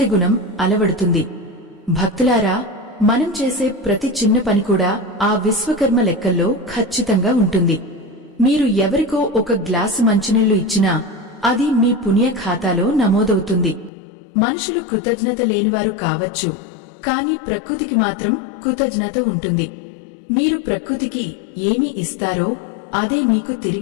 గుణం అలవడుతుంది. భక్తులారా, మనం చేసే ప్రతి చిన్న పని కూడా ఆ విశ్వకర్మ లెక్కల్లో ఖచ్చితంగా ఉంటుంది. మీరు ఎవరికో ఒక గ్లాసు మంచినీళ్లు ఇచ్చినా అది మీ పుణ్య ఖాతాలో నమోదవుతుంది. మనుషులు కృతజ్ఞత లేనివారు కావచ్చు, కాని ప్రకృతికి మాత్రం కృతజ్ఞత ఉంటుంది. మీరు ప్రకృతికి ఏమి ఇస్తారో అదే మీకు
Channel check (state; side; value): drops out; right; at 13.9 s